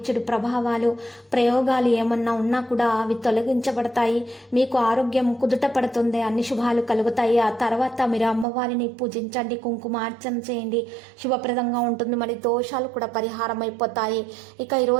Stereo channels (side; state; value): left; drops out; at 8.5 s